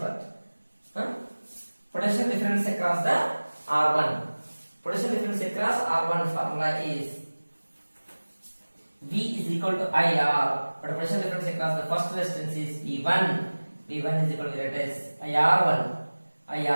what? Potential difference across the R1. Potential difference across R1 formula is V is equal to IR, but potential difference across the first resistance is V1. V1 is equal to IR1,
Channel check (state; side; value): inverted; both; correlation -1.00